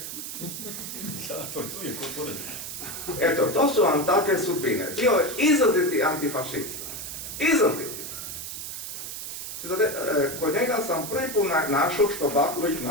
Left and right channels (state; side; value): noise; right; hiss, 7 dB below the sound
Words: Eto, to su vam takve sudbine. Bio je izraziti antifašista. Izraziti. Kod njega sam prvi put našao što Baković